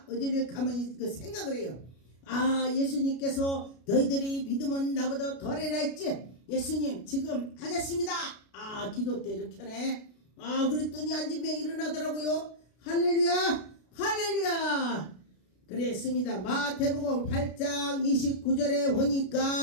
어디를 가만히 생각을 해요. 예수님께서 너희들이 믿으면 나보다 덜해라 했지. 예수님 지금 하겠습니다. 기도 때 이렇게 하네. 그랬더니 앉은 명이 일어나더라고요. 할렐루야 할렐루야. 그랬습니다. 마태복음 8장 29절에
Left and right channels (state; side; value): late; right; 33 ms